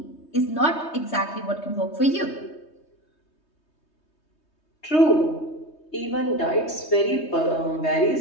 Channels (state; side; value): late; right; 3.2 ms